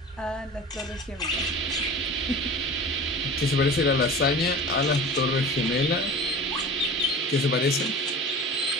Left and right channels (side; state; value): both; normal; correlation 0.37